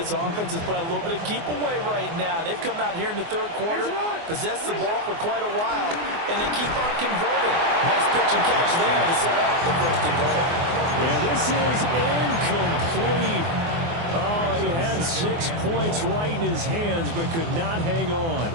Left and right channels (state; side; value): late; left; 24 ms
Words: offense is playing a little bit of keep away right now. They've come out here in the 3rd quarter, possessed the ball for quite a while, and they keep on converting. Nice pitch and catch there to set up the 1st and goal. And this is incomplete. Oh, he had 6 points right in his hands, but could not hang on.